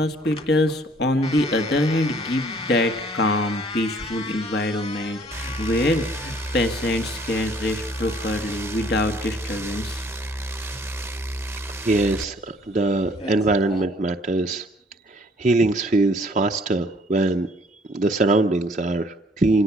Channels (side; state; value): both; normal; correlation 0.59